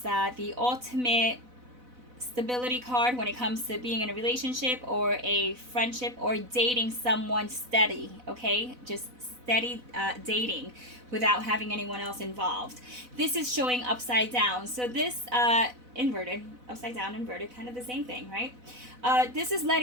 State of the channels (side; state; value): left; late; 4.0 ms